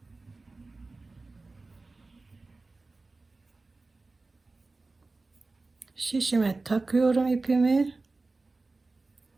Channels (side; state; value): left; quieter; 3.5 dB